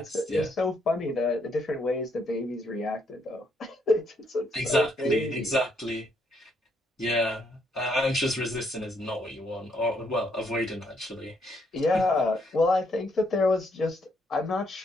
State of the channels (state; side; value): normal; both; correlation 0.73